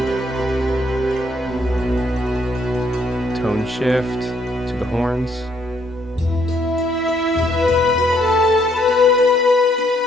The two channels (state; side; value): normal; both; correlation 0.69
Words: Tone shift to the horns.